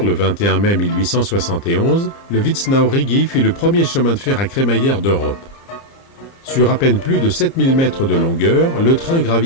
le 21 mai 1871, le Witznau-Rigi fut le premier chemin de fer à crémaillère d'Europe. Sur à peine plus de 7000 mètres de longueur, le train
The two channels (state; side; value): late; right; 30 ms